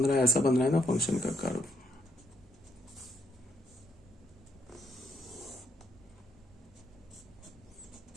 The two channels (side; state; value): both; normal; correlation 0.73